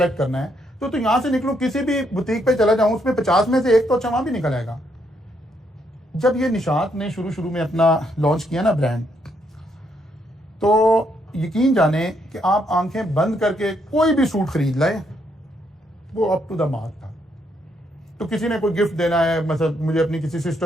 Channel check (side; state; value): both; normal; correlation 0.75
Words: करना है तो यहां से निकलूं, किसी भी बुटीक पे चला जाऊं, उसमें 50 में से एक तो अच्छा वहां भी निकल आएगा। जब ये निशात ने शुरू में अपना लॉन्च किया ना ब्रांड, तो यकीन जाने कि आप आंखें बंद करके कोई भी सूट खरीद लाए, वो अप टू द मार्क था। तो किसी ने कोई गिफ्ट देना है, मतलब मुझे अपनी किसी